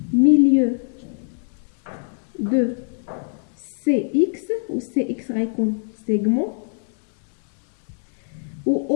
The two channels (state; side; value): silent; right; digital silence